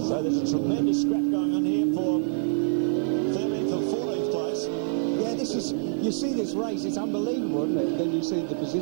So there's a tremendous scrap going on here for 13th and 14th place. Yeah, this is... You see this race, it's unbelievable, isn't it? Then you see the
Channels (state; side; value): silent; left; 56 dB below the other